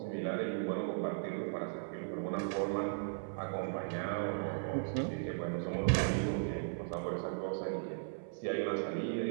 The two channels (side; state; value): left; silent; 53 dB below the other